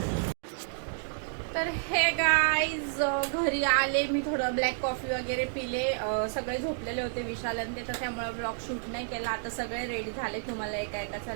तर हे गाईज घरी आले मी. थोडं ब्लॅक कॉफी वगैरे पिले. सगळे झोपलेले होते विशाल आणि ते, तर त्यामुळे ब्लॉग शूट नाही केला. आता सगळे रेडी झाले. तुम्हाला एका एकाचा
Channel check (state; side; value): silent; left; digital silence